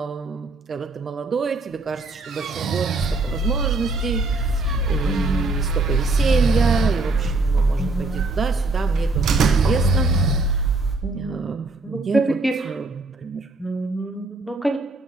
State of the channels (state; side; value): quieter; left; 3.2 dB